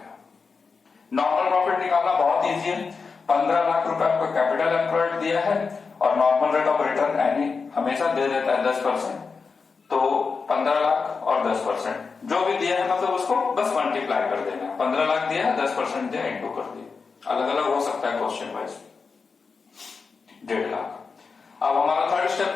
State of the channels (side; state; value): right; quieter; 4.9 dB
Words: नॉर्मल प्रॉफिट निकालना बहुत इजी है, 15 लाख रुपए आपको कैपिटल एम्प्लॉयड दिया है और नॉर्मल रेट ऑफ रिटर्न यानी हमेशा दे देता है 10%, तो 15 लाख और 10% जो भी दिया है मतलब उसको बस मल्टीप्लाई कर देना है। 15 लाख दिया है, 10% दिया, इंटू कर दिया, अलग अलग हो सकता है क्वेश्चन वाइज, 1.5 लाख। अब हमारा थर्ड स्टेप